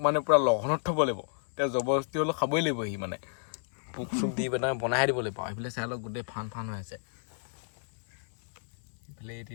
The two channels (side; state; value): right; silent; digital silence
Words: মানে পূৰা লগনত থ'ব লাগিব তেওঁ জবৰদস্তি হ'লেও খাবই লাগিব সি মানে পোক চোক দি পেলাই বনাই দিব লাগিব সেইফালে চাই লওক গোটেই ফান হৈ আছে এইফালে এই